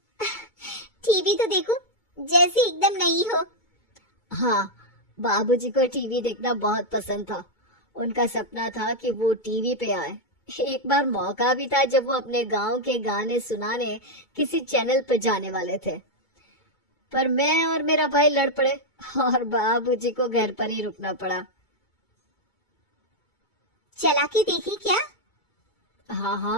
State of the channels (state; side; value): late; right; 2.2 ms